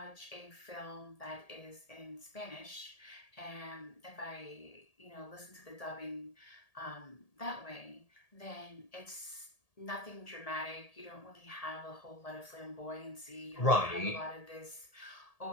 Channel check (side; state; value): right; late; 1.8 ms